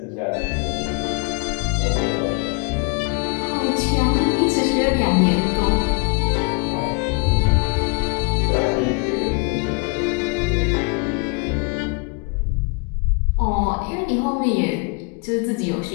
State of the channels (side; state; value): right; quieter; 32.0 dB